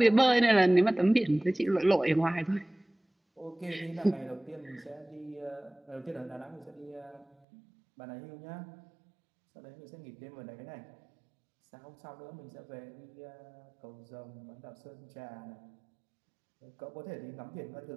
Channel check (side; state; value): left; drops out; at 7.2 s